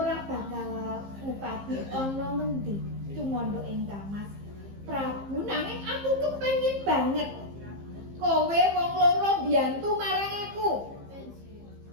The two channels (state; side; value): late; left; 15 ms